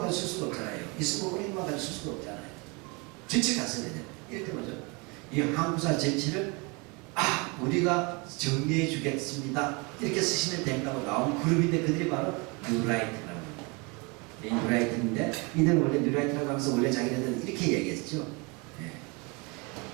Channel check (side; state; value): left; quieter; 29.2 dB